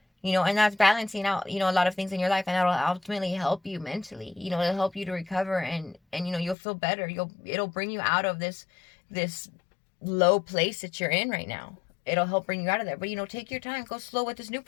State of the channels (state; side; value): drops out; right; at 6.6 s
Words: And that's balancing out, a lot of things in your life, and that'll ultimately help you mentally, it'll help you to recover, and you'll feel better. It'll bring you out of this low place that you're in right now. It'll help bring you out of there. But, take your time, go slow with this new